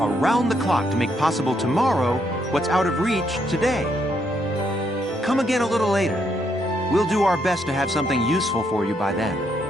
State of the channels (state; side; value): normal; both; correlation 0.75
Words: the clock to make possible tomorrow what's out of reach today. Come again a little later. We'll do our best to have something useful for you by then.